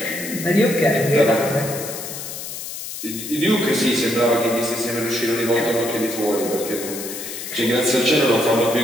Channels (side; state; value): left; noise; hiss, 8 dB below the sound